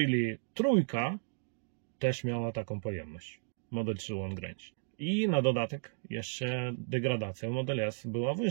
trójka też miała taką pojemność. Model 3 long range. I na dodatek jeszcze degradacja Model S była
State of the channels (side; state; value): left; silent; digital silence